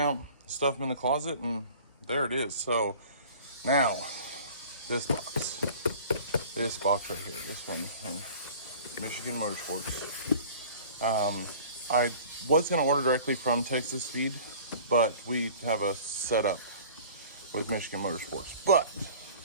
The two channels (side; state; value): both; inverted; correlation -0.46